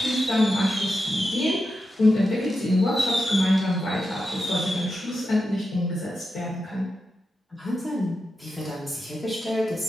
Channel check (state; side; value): normal; both; correlation 0.88